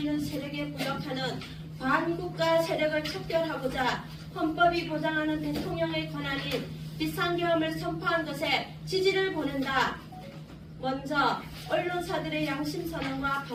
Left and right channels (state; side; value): identical; both; correlation 1.00